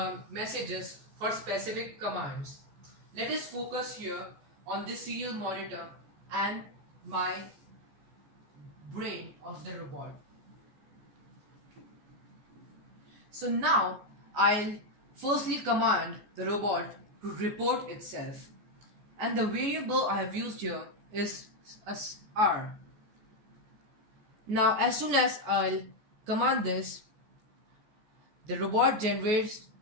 messages for specific commands. Let us focus here on this serial monitor and my brain of the robot. So now I'll firstly command the robot to report itself, and the variable I have used here is R. Now as soon as I'll command this, the robot generates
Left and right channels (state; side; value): late; left; 14 ms